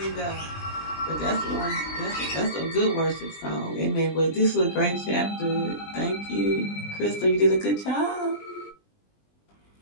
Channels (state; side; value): late; right; 20 ms